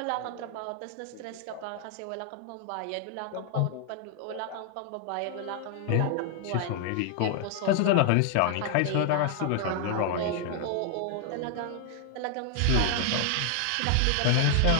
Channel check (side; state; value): both; different; correlation 0.00